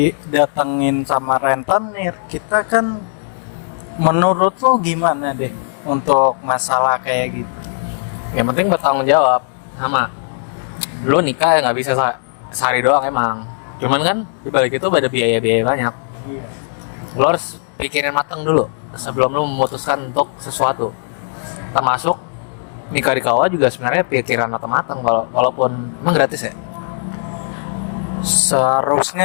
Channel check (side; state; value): right; silent; digital silence